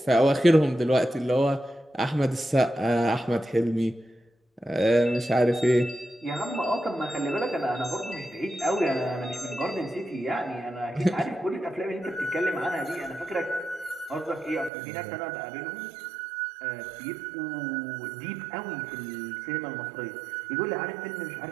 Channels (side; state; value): left; drops out; at 14.7 s